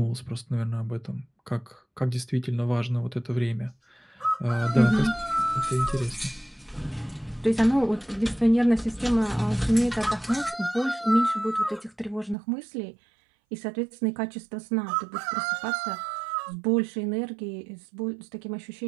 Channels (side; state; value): left; drops out; at 12.4 s